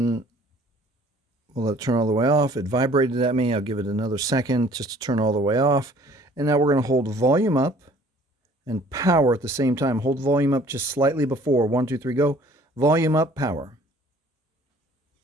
we'll let it turn all the way off. It vibrated at me. I'll give it another second just to turn all the way off. And now we're going to hold volume up and power at the same time. Hold volume up just slightly before. 1, 2, 3, go. Volume up, power.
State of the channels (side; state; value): both; normal; correlation 0.54